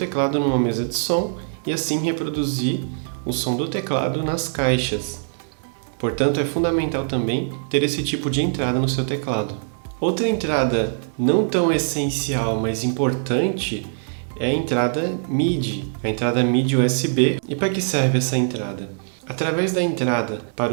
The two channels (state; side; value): silent; left; digital silence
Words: numa mesa de som e assim reproduzir o som do teclado nas caixas. Portanto, é fundamental também ter esse tipo de entrada no seu teclado. Outra entrada não tão essencial, mas importante, é a entrada MIDI, a entrada MIDI USB. E para que serve essa entrada? Através da entrada